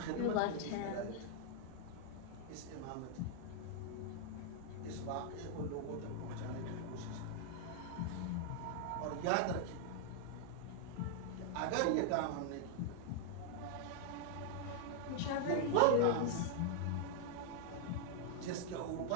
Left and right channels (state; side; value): different; both; correlation 0.00